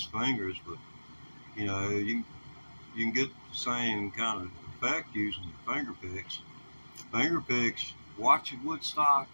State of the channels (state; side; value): inverted; both; correlation -1.00